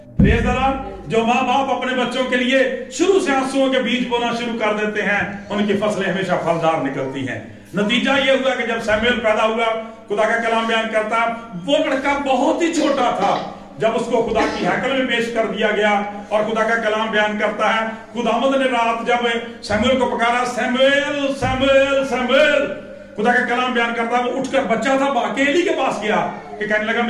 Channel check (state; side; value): identical; both; correlation 1.00